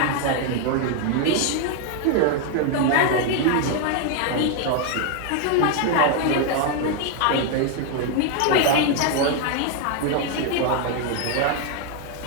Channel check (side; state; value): both; different; correlation 0.01